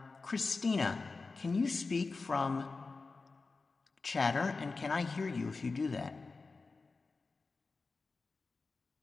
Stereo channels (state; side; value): quieter; right; 4.0 dB